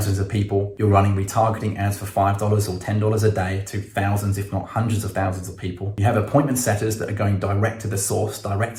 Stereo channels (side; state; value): both; identical; correlation 1.00